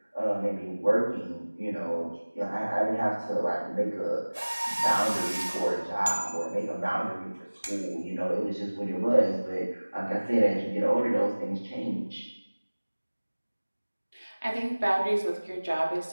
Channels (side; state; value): both; inverted; correlation -1.00